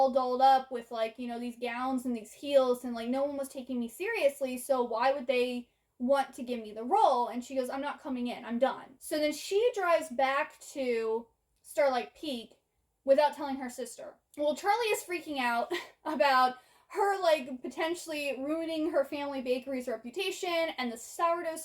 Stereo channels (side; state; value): both; identical; correlation 1.00